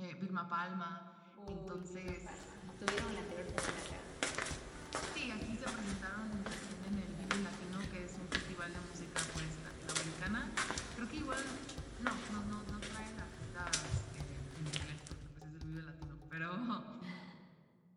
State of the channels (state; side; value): identical; both; correlation 1.00